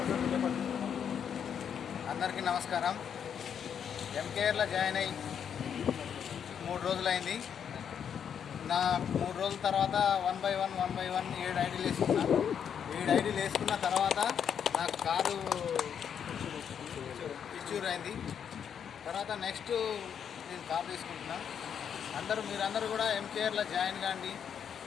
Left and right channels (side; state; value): right; quieter; 8.0 dB